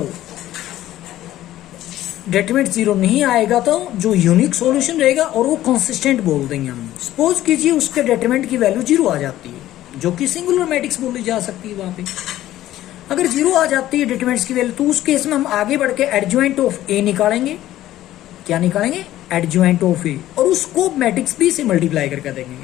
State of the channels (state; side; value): quieter; right; 14.0 dB